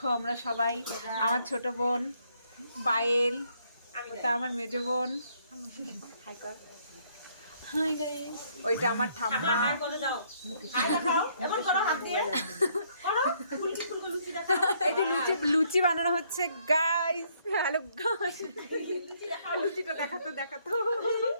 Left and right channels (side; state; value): both; inverted; correlation -0.68